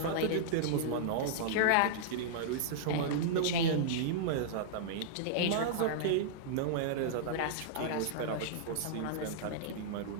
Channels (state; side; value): different; both; correlation -0.02